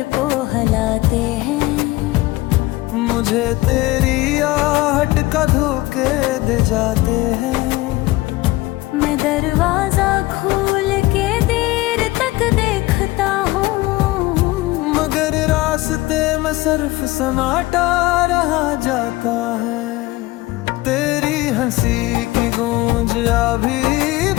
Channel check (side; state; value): right; quieter; 19.4 dB